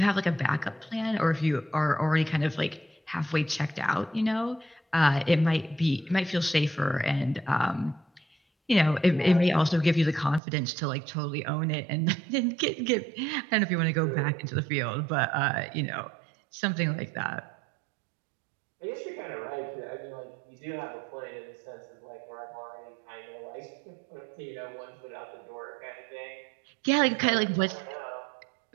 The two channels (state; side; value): drops out; left; at 10.4 s